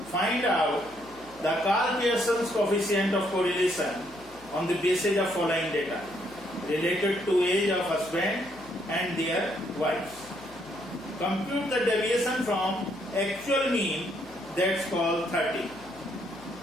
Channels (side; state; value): left; noise; hum, 23 dB below the sound